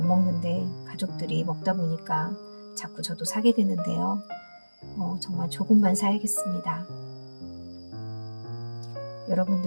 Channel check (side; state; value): both; inverted; correlation -1.00